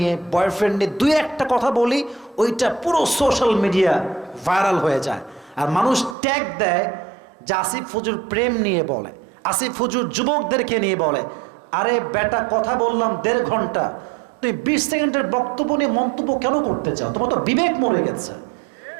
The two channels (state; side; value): drops out; left; at 6.2 s